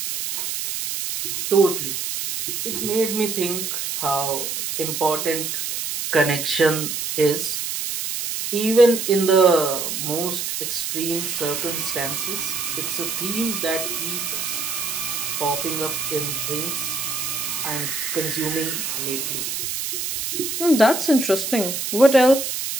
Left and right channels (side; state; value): right; noise; hiss, 3 dB below the sound